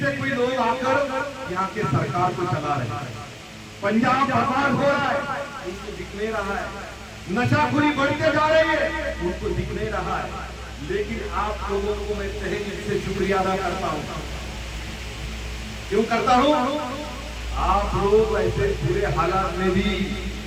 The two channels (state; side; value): identical; both; correlation 1.00